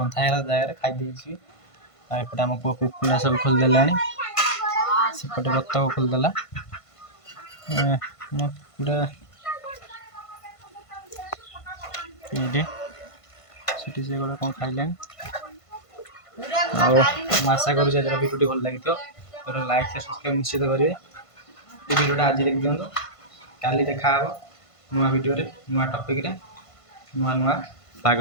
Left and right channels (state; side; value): late; right; 1.5 ms